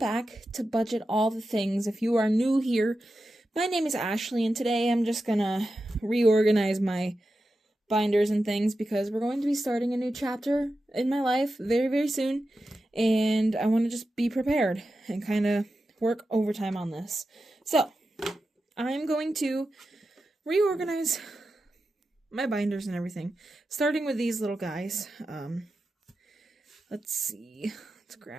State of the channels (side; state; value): both; normal; correlation 0.91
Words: to Budget All the Things. If you are new here, my name is Ashley, and today I'm just gonna reorganize my binders and things because we're going to be starting a new chapter in my life very, very soon, and I want to just be prepared and kind of work overtime on this. So, I'm going to reorganize my binders and everything, starting with these little guys. Let's see. Let's